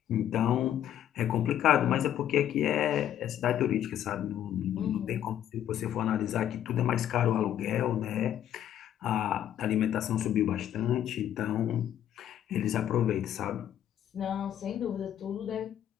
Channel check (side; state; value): right; quieter; 10.8 dB